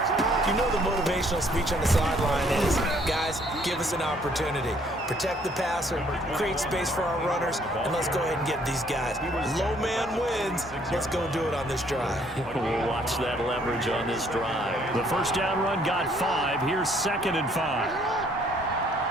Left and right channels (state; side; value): normal; both; correlation 0.64